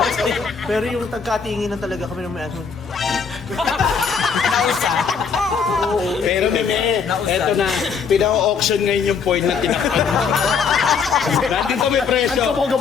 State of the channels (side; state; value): right; quieter; 5.9 dB